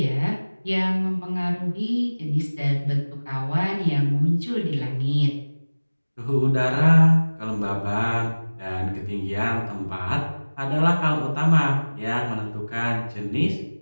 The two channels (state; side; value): inverted; both; correlation -1.00